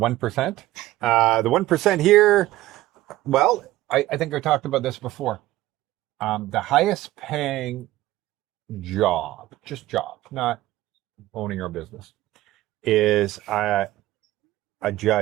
The 1% here, well, I think I talked about this before. The highest paying job, just job, not owning your business, is a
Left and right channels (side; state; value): left; quieter; 16.1 dB